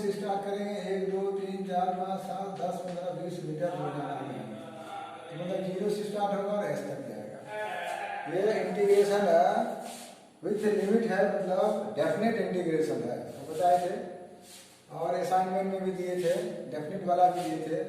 स्टार्ट करेंगे, 1 2 3 4 5 7 10 15 20 मीटर हो जाएगा, मतलब 0 से स्टार्ट होगा और एस तक जाएगा। ये इंटीग्रेशन विथ लिमिट है, मतलब डेफिनेट इंटीग्रेशन है, तो बताए थे। और असाइनमेंट में भी दिए थे, डेफिनेट वाला भी दिए थे,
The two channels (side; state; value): both; identical; correlation 1.00